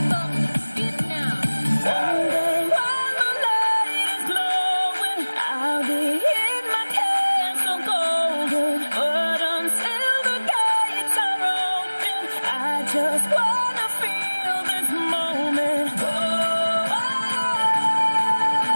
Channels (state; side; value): inverted; both; correlation -1.00